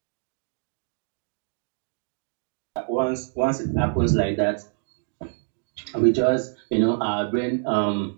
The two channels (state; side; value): silent; left; 61 dB below the other